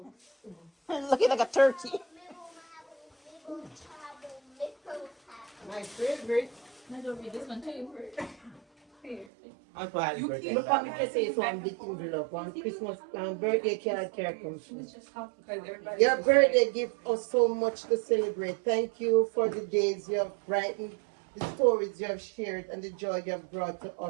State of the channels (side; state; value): left; drops out; at 9.2 s